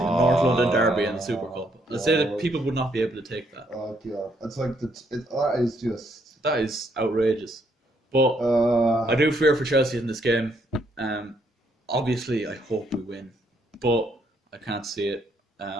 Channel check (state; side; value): normal; both; correlation 0.72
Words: a North London derby and the Super Cup. Let's say that people would not be able to take that. Oh god, it's like that is just outrageous. But I do fear for Chelsea in this game. Obviously, I hope we win, but I can't see it.